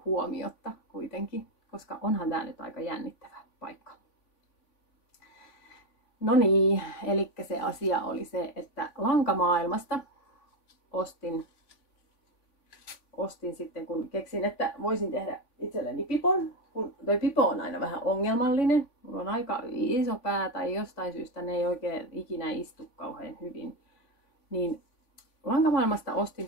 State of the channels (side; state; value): right; late; 3.5 ms